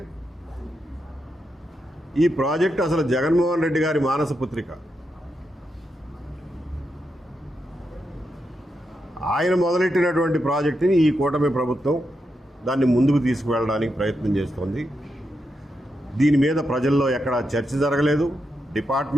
ఈ ప్రాజెక్టు అసలు జగన్మోహన్ రెడ్డి గారి మానస పుత్రిక. ఆయన మొదలెట్టినటువంటి ప్రాజెక్టుని ఈ కూటమి ప్రభుత్వం దాన్ని ముందుకు తీసుకువెళ్ళడానికి ప్రయత్నం చేస్తోంది. దీని మీద ప్రజల్లో ఎక్కడా చర్చ జరగలేదు.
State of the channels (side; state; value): both; normal; correlation 0.85